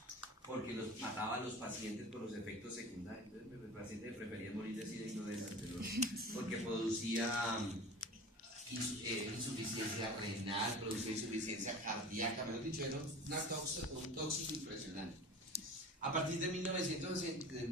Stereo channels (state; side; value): normal; both; correlation 0.37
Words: porque mataba a los pacientes por los efectos secundarios. Entonces el paciente prefería morir de SIDA y no de la anterior, porque producía insuficiencia renal, producía insuficiencia cardíaca, mejor dicho, era un tóxico impresionante. A partir de